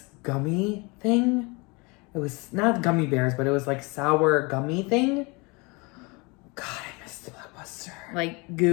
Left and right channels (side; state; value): right; quieter; 27.8 dB